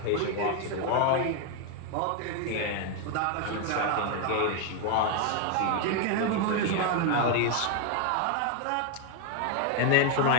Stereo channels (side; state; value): both; different; correlation 0.01